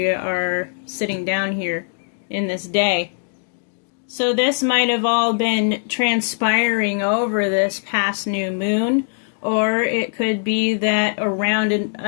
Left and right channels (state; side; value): silent; right; digital silence